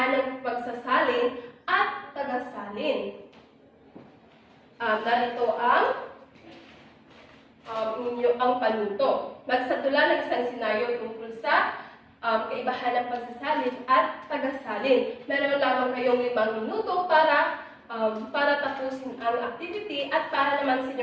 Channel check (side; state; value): both; identical; correlation 1.00